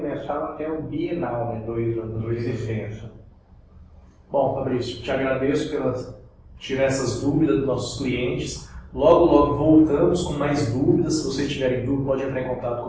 mensal até o bienal, né? 2 anos de licença. Bom, Fabrício, te agradeço por tirar essas dúvidas dos nossos clientes. Logo, logo voltamos com mais dúvidas. Se vocês tiverem dúvida, pode entrar em contato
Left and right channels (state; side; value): identical; both; correlation 1.00